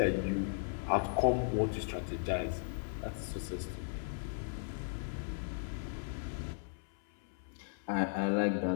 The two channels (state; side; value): silent; right; 53 dB below the other